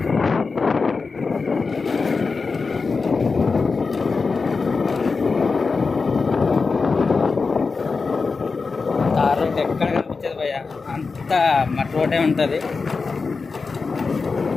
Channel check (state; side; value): quieter; right; 4.5 dB